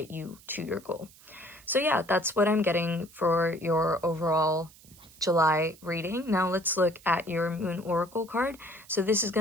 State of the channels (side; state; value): right; noise; hiss, 24 dB below the sound